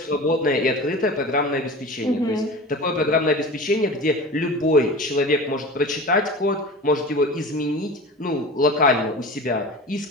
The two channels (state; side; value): normal; both; correlation 0.34